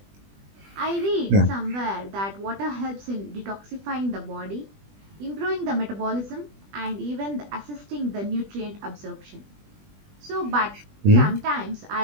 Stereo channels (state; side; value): late; left; 20 ms